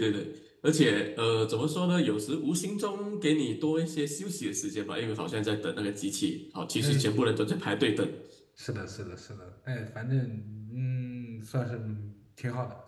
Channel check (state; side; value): identical; both; correlation 1.00